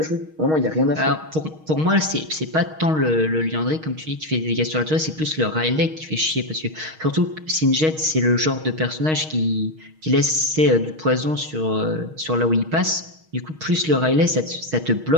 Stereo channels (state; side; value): late; left; 6.4 ms